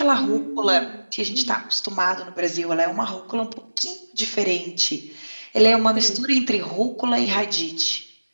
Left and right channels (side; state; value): both; inverted; correlation -1.00